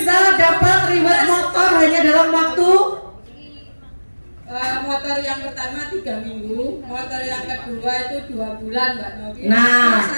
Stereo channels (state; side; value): inverted; both; correlation -1.00